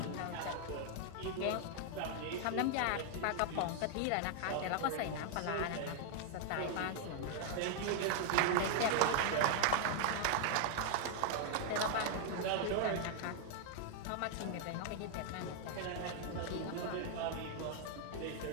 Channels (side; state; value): both; different; correlation 0.00